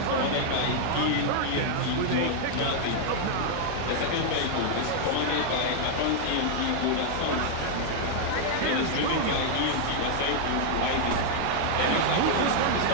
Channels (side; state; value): both; different; correlation 0.00